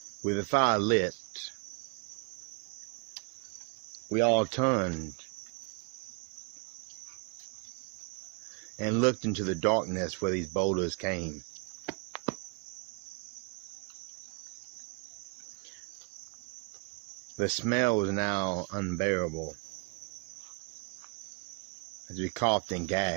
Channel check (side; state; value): left; quieter; 31.8 dB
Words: With the fire lit, we all turned and looked into the darkness where these boulders came. The smell was now unbearable as we coughed and